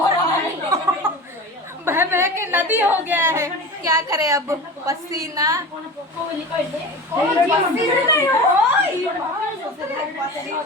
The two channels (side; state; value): both; normal; correlation 0.32